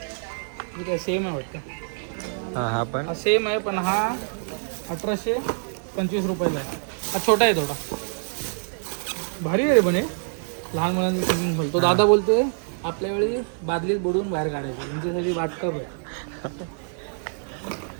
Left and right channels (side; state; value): left; silent; digital silence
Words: ठीक आहे, सेम आहे वाटतं. हा पण हा सेम आहे, पण हा 1825 रुपयाला आहे. हा छोटा आहे थोडा. भारी आहे रे पण हे. लहान मुलांचं स्विमिंग पूल. तो दादा बोलतोय आपल्या वेळी बादलीत बुडवून बाहेर काढायचं, तुमच्यासाठी वाटकप आहे.